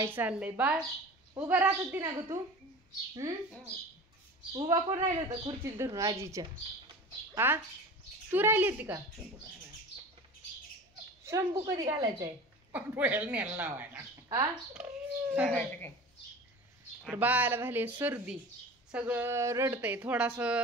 चाललंय? बाळ उभा राहत होती ना ग तू? उभा कोण राहिलं होतं खुर्चीत धरून आजीच्या? हा तू राहिली होती का? शंभू कधी घालायचंय? हा तर बाळाला झाली सर्दी, सगळं रडतंय, थोडास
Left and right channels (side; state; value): both; normal; correlation 0.36